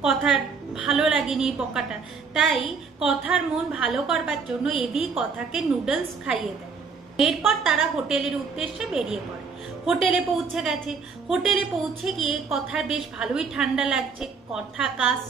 কথার ভালো লাগেনি বকাটা, তাই কথার মন ভালো করবার জন্য এবি কথাকে নুডলস খাইয়ে দেয়। এরপর তারা হোটেলের উদ্দেশ্যে বেরিয়ে পড়ে। হোটেলে পৌঁছে গেছে। হোটেলে পৌঁছে গিয়ে কথার বেশ ভালোই ঠান্ডা লাগছে, কথা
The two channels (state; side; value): quieter; left; 5.2 dB